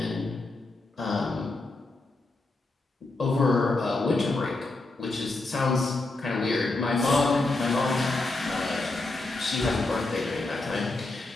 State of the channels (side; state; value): right; quieter; 3.1 dB